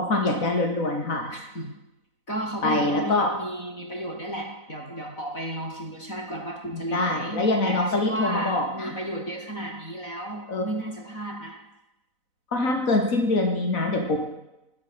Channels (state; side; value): late; right; 4.0 ms